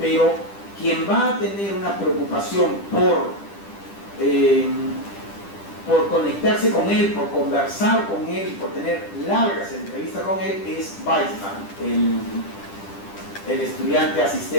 quien va a tener una preocupación por conectarse con él, por conversar con él, por tener largas entrevistas con él, es Weizmann, el estudiante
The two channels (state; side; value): late; right; 10 ms